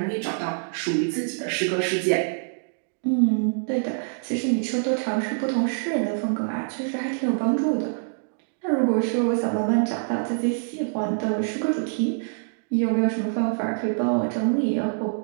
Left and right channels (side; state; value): left; silent; digital silence